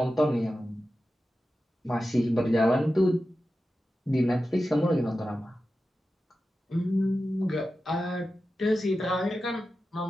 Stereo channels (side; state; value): both; normal; correlation 0.93